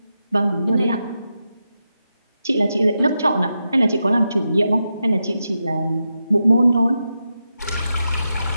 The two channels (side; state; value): both; inverted; correlation -0.88